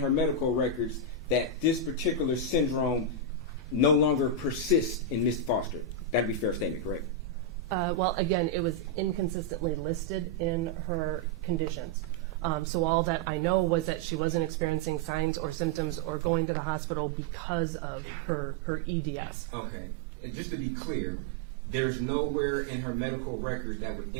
medical records that this particular syndrome no longer persists in Ms. Foster. That'd be a fair statement, correct? Well, again, it was inconsistently listed in her conditions. So all that I know was that she wasn't experiencing signs or symptoms or going to the hospital because of her EDS. Okay. And just to be clear, there's nowhere in her medical records that would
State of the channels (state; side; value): drops out; left; at 16.3 s